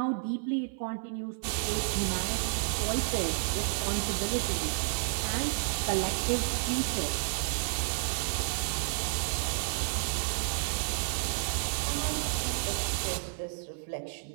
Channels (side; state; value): left; silent; 57 dB below the other